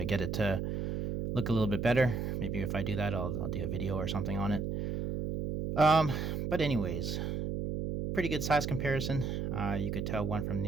get it to look a little bit better. Maybe if I do that, I'll do a video or something on it. Um, but anyways, pretty good size comparison. You could tell one from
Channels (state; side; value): noise; right; hum, 2 dB below the sound